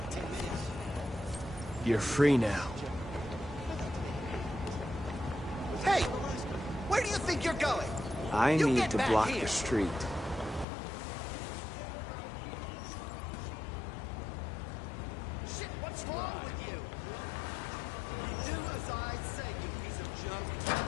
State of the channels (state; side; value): drops out; right; at 10.7 s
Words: You're free now. Hey! Where do you think you're going? I You need get to back block here. the street. You stay right here, you fucking machine. Shit, what's wrong with you? Do as I say, you piece of junk.